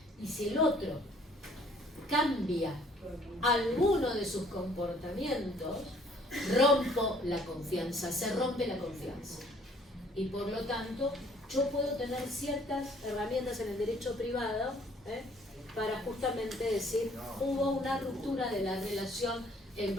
Y si el otro cambia alguno de sus comportamientos, rompo la confianza, se rompe la confianza. Y por lo tanto, yo puedo tener ciertas herramientas en el derecho privado para justamente decir, hubo una ruptura de la relación en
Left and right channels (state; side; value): normal; both; correlation 0.59